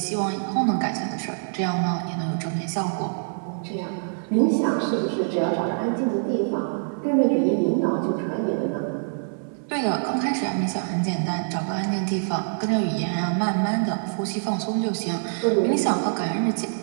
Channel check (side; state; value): left; silent; digital silence